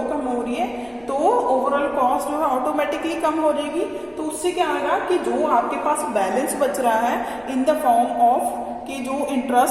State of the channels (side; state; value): right; noise; rumble, 29 dB below the sound